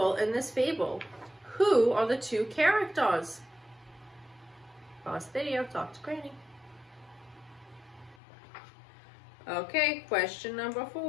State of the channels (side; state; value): right; drops out; at 8.2 s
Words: in this fable. Who are the 2 characters? Pause the video, talk to Granny. Okay, question number